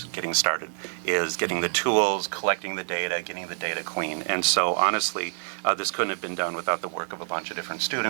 getting started, is getting the tools, collecting the data, getting the data clean. And so honestly, this couldn't have been done without the work of a bunch of different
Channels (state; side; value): silent; left; 60 dB below the other